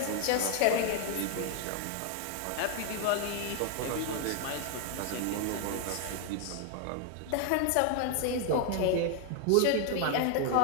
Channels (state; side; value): different; both; correlation 0.00